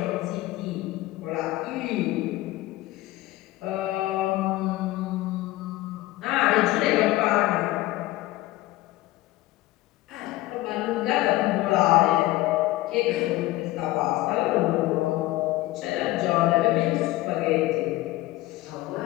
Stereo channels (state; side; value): quieter; right; 17.6 dB